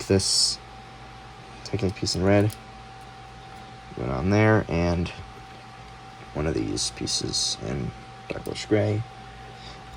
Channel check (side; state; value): both; identical; correlation 1.00